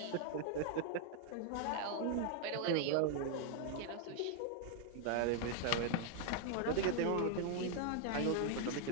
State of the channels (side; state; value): both; different; correlation 0.00